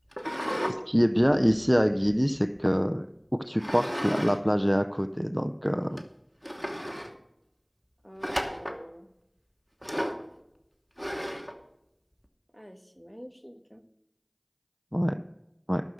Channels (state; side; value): identical; both; correlation 1.00